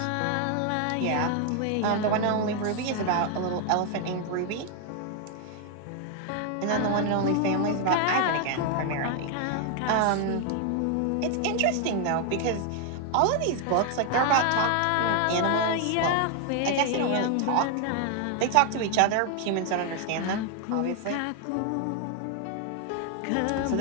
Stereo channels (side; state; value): both; different; correlation 0.01